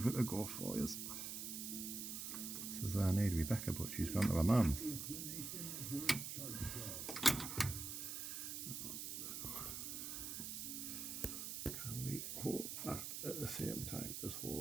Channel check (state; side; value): noise; right; hiss, 5 dB below the sound